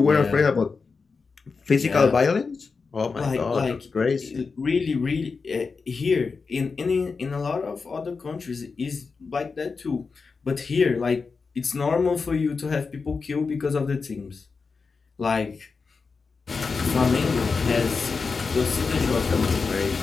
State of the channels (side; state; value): right; quieter; 4.8 dB